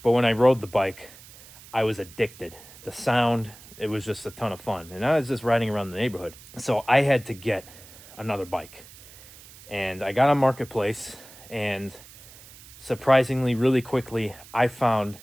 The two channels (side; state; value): right; noise; hiss, 20 dB below the sound